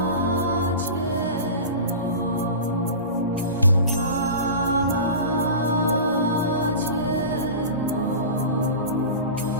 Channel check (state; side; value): inverted; both; correlation -0.31